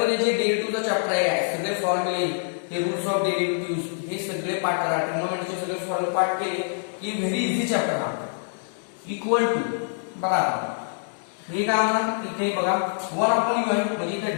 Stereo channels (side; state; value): right; silent; digital silence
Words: जे डेरिव्हेटिव्हचा chapter आहे सगळे फॉर्म्युले हे रूल्स ऑफ डेरिव्हेटिव्हज हे सगळे पाठ करा. ट्रिग्नोमेट्रीचे सगळे फॉर्म्युले पाठ केले की व्हेरी इझी चॅप्टर हा. इक्वल टू बघा हे काय म्हणा इथे बघा 1 अपॉन u आहे म्हणजे इथे